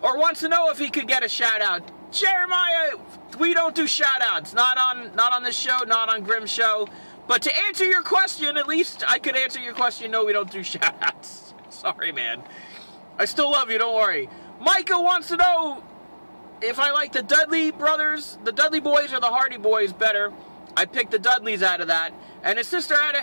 Or wants to know if he could get a shout-out. Jeremiah, we don't do shout-outs. Not on this show, not on Grimm's show. But to answer your question, at least I could answer your question, no, we don't do shout-outs. Sorry, man. I still love you, don't worry. Micah wants to know if I like the Dudley brothers, the Dudley boys, or the Hardy boys better. I picked the Dudleys out of that. And his sister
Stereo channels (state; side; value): inverted; both; correlation -1.00